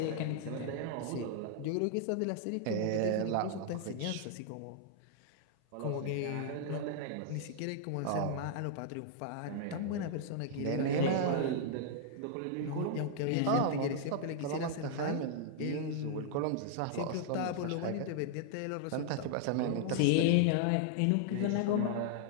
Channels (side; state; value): both; different; correlation -0.01